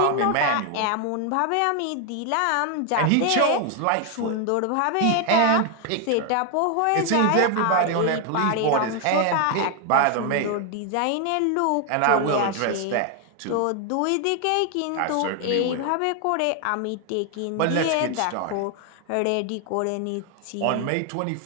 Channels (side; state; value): both; different; correlation 0.01